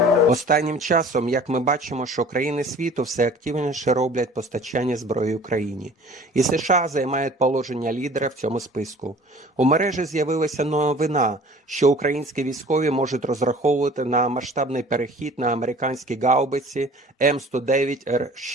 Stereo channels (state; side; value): normal; both; correlation 0.47